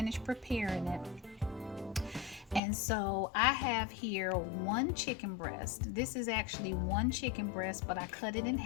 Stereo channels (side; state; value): right; drops out; at 2.6 s